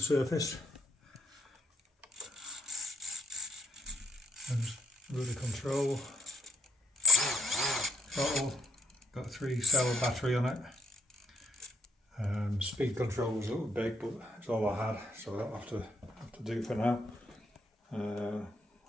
And rudder control. Throttle, got a 3-cell battery on it. Speed control was a little big, but it's all I had, so that'll have to do for now.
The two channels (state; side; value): normal; both; correlation 0.70